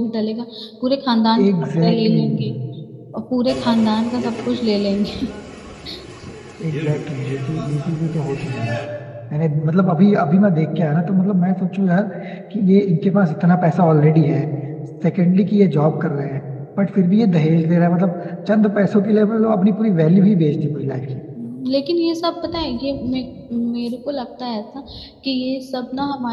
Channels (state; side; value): identical; both; correlation 1.00